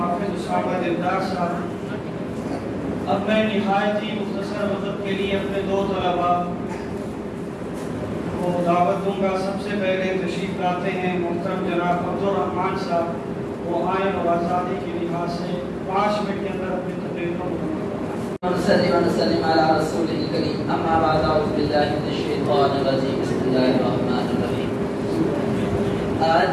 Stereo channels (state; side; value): identical; both; correlation 1.00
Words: उसामा दिलदार साहब। अब मैं निहायत ही मुख्तसर वक्त के लिए अपने दो तलबा को दावत दूंगा। सबसे पहले तशरीफ लाते हैं मुहतरम जनाब अब्दुल रहमान साहब। वो आयन और आज़ादी की लिहाज से 5 मिनट के अंदर अपनी तकरीर को आज